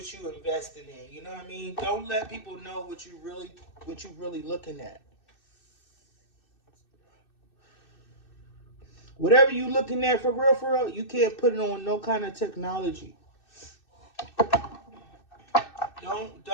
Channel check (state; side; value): late; right; 2.6 ms